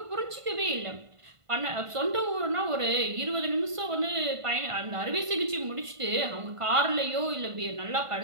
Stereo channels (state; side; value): late; left; 1.5 ms